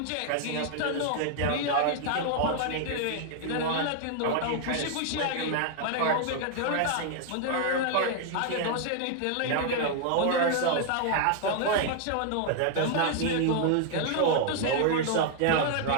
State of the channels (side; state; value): both; different; correlation 0.00